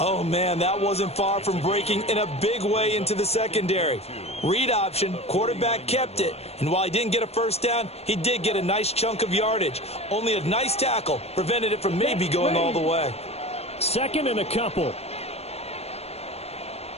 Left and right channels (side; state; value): right; late; 0.30 ms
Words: man, that wasn't far from breaking in a big way into the secondary. Read option, quarterback kept it. And while he didn't get a first down, he did get a nice chunk of yardage. Only a nice tackle prevented it from maybe going all the way. 2nd and a couple.